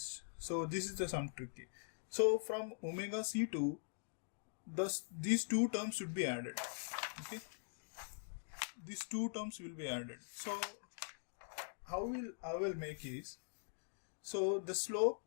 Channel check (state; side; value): silent; right; digital silence